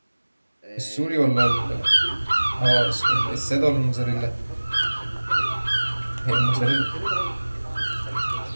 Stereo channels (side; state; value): both; inverted; correlation -1.00